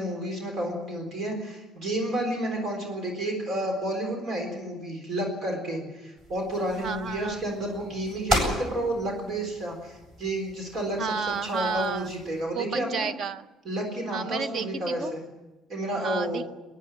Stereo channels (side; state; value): both; normal; correlation 0.57